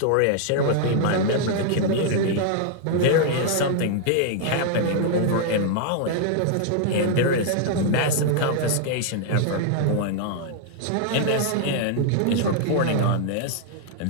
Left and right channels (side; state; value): both; different; correlation 0.00